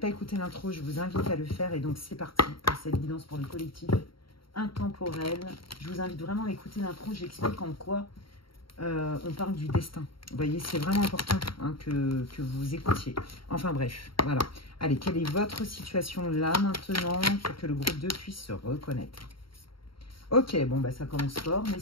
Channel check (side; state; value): right; late; 0.73 ms